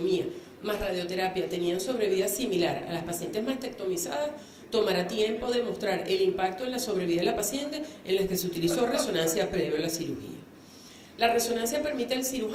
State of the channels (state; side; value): identical; both; correlation 1.00